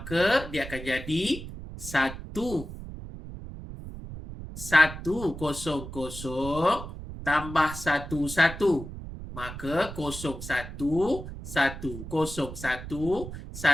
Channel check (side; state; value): right; noise; rumble, 10 dB below the sound